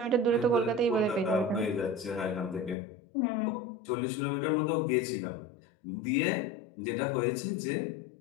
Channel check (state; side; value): drops out; right; at 2.8 s